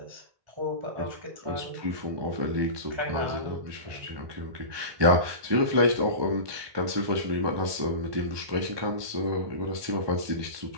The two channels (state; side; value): late; left; 1.2 ms